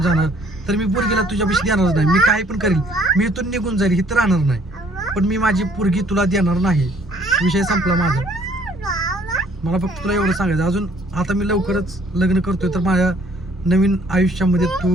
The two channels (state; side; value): normal; both; correlation 0.60